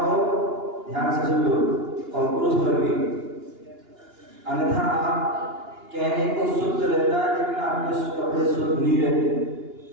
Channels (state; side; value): late; left; 2.9 ms